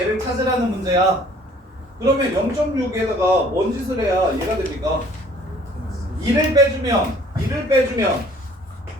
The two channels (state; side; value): normal; both; correlation 0.55